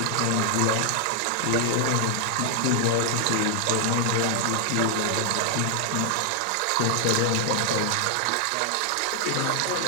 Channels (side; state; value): both; different; correlation 0.00